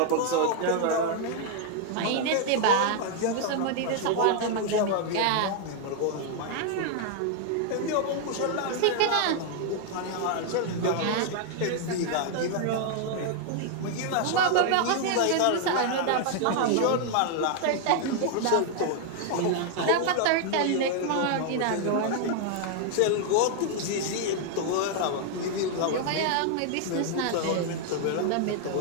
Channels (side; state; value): both; different; correlation 0.00